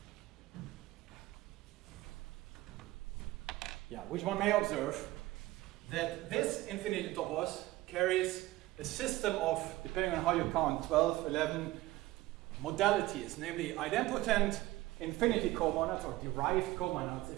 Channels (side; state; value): left; quieter; 17.9 dB